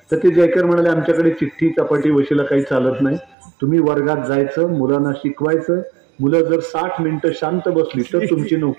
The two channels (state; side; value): drops out; left; at 3.4 s